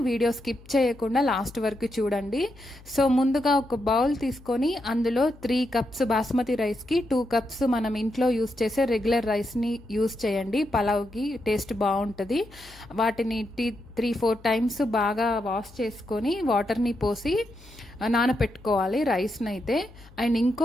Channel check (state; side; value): noise; left; hum, 22 dB below the sound